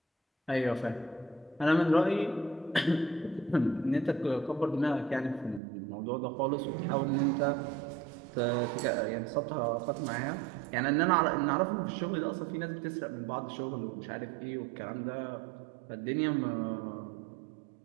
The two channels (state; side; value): drops out; left; at 5.6 s